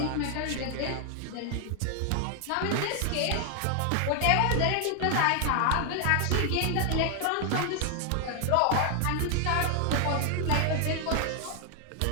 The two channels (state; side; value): different; both; correlation 0.00